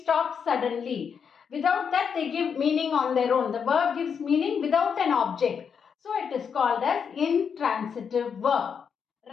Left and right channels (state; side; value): quieter; right; 6.8 dB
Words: suddenly. Without that, they give meaning on their own. The verb gives meaning without an object. So it is called as intransitive verb.